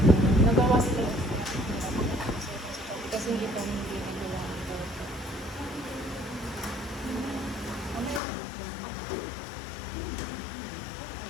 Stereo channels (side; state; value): right; drops out; at 8.2 s